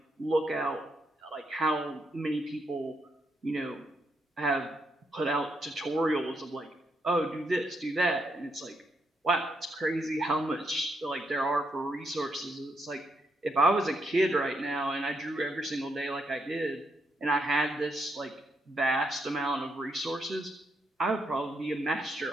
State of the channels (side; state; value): both; normal; correlation 0.79